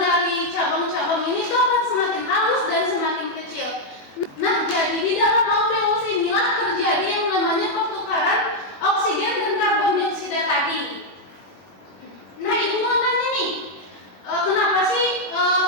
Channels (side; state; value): right; late; 21 ms